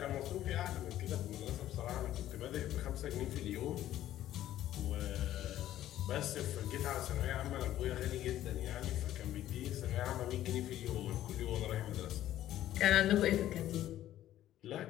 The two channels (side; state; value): right; quieter; 13.0 dB